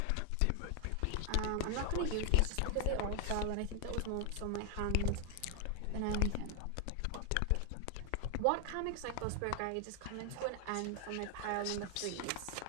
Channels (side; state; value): both; different; correlation 0.00